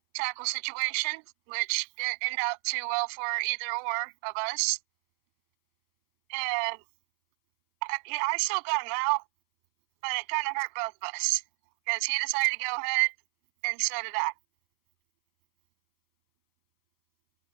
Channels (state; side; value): silent; left; 58 dB below the other